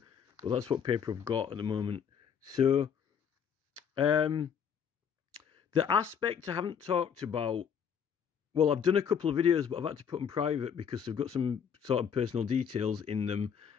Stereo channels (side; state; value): right; quieter; 7.5 dB